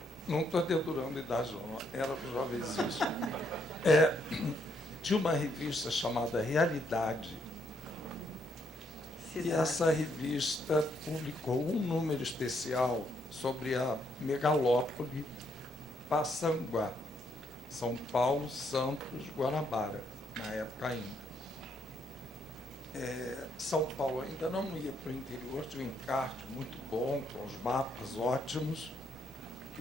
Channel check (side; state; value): both; normal; correlation 0.73